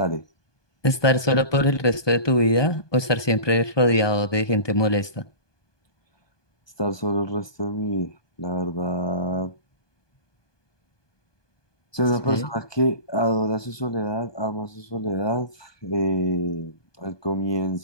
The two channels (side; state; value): right; late; 1.2 ms